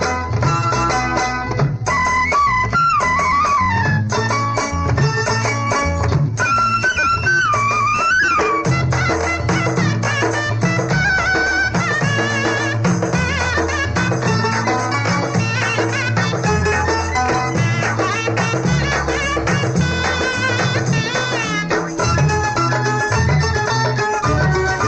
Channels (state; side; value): identical; both; correlation 1.00